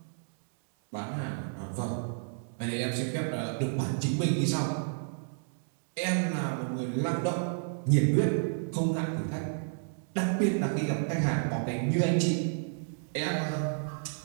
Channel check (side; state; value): left; silent; digital silence